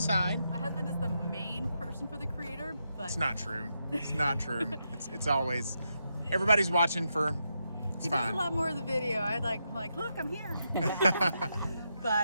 My husband is the main person for the creator, but It's not true. It's not true. It's always, everybody's watching for, it's he fine. does a lot more of the video. I'm like, look, I'm here.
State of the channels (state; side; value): inverted; both; correlation -0.84